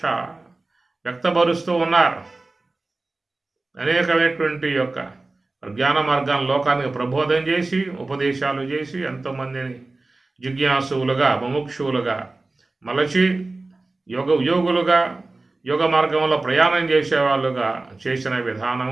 వ్యక్తపరుస్తూ ఉన్నారు. అనేకమైనటువంటి యొక్క జ్ఞాన మార్గాన్ని లోకానికి ప్రబోధం చేసి ఉపదేశాలు చేసి ఎంతోమందిని జిజ్ఞాసువులుగా ముముక్షువులుగా మలచి యోగులుగా యోగ మార్గంలో ప్రయాణం చేసేవాళ్ళుగా చేసిన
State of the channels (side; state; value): left; quieter; 3.2 dB